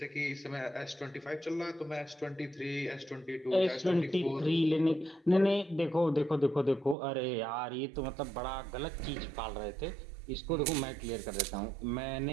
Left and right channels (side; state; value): left; drops out; at 7.0 s